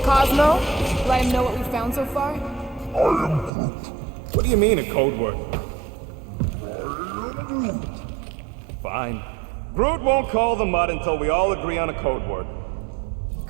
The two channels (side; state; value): left; drops out; at 3.5 s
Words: Cosmo? Let him know what we found so far? What do you mean, a code word? Fine. Groot won't call the mud until we all agree on a code word.